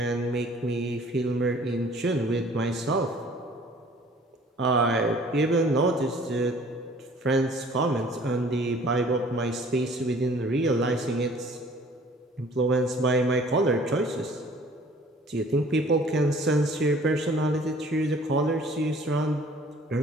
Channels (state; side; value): normal; both; correlation 0.53